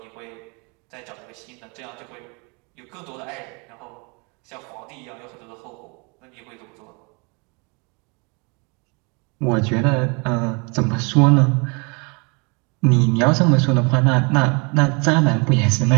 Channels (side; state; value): left; quieter; 31.6 dB